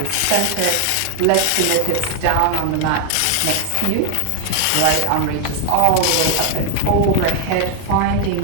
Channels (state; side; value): different; both; correlation 0.00